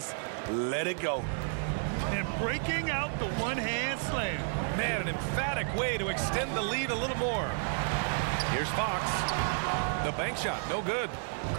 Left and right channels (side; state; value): left; silent; 57 dB below the other